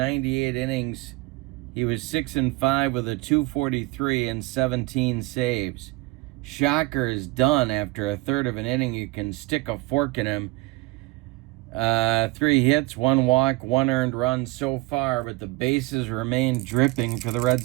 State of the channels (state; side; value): quieter; left; 21.1 dB